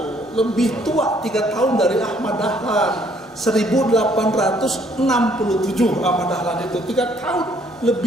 Lebih tua 3 tahun dari Ahmad Dahlan. 1867 Ahmad Dahlan itu 3 tahun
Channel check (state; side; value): normal; both; correlation 0.64